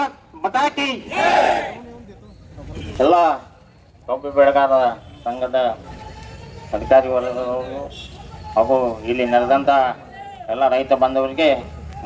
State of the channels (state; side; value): identical; both; correlation 1.00